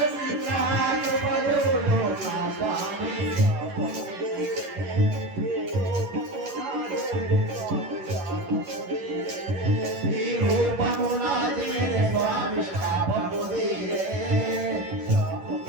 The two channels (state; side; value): late; left; 11 ms